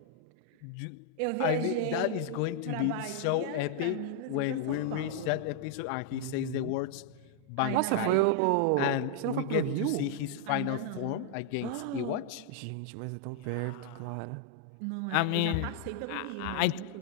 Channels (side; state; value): both; different; correlation -0.01